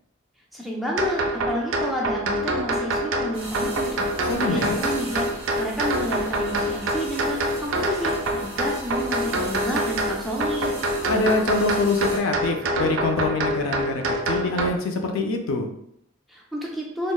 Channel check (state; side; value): normal; both; correlation 0.23